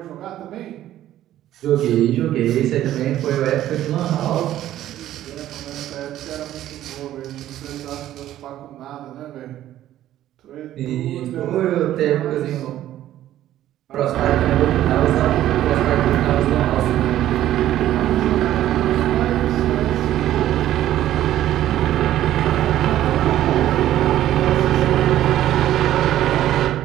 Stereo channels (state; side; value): quieter; left; 12.9 dB